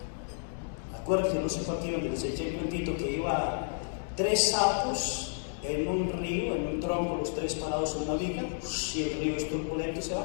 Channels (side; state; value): right; silent; digital silence